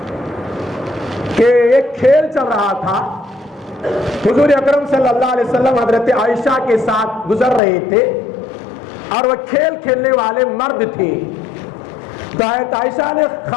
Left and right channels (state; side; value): drops out; right; at 7.6 s